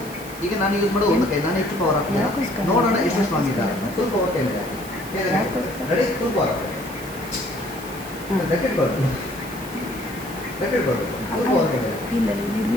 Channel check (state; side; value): noise; right; hiss, 15 dB below the sound